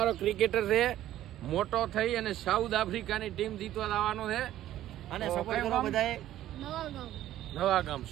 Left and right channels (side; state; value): left; quieter; 13.2 dB